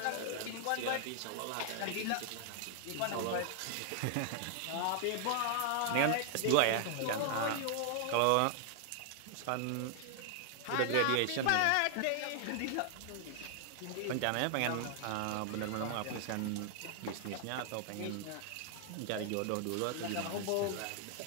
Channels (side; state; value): both; different; correlation 0.00